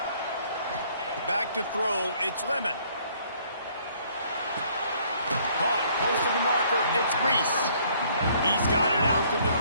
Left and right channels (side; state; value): both; inverted; correlation -0.62